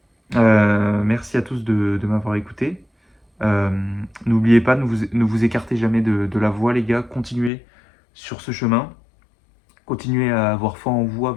Merci à tous de m'avoir écouté. Euh, N'oubliez pas, ne vous écartez jamais de la voie, les gars. Continuez sur ce chemin. Continuez à avoir foi en vous, à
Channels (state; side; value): drops out; right; at 7.5 s